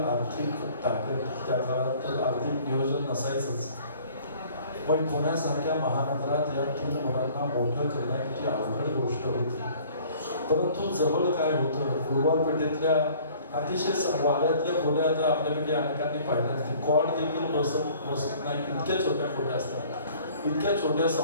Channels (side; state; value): both; inverted; correlation -0.52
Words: ताकद त्या काळात आर्थिक नियोजन नसायचंच. पण पुण्यासारख्या महानगरात या 3 मुलांना मोठं करणं किती अवघड गोष्ट होती. परंतु जवळ काय होतं, गुरुवार पेठेतल्या अतिशय वाड्यातल्या खोल्या आता आपल्याकडे अनेकांनी पाहिल्या. कॉड देखील बसत नाही, इतक्या छोट्या खोल्या असतात. इतक्या छोट्या